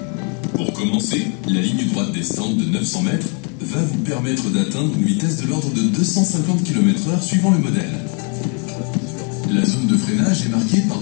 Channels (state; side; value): quieter; right; 38.7 dB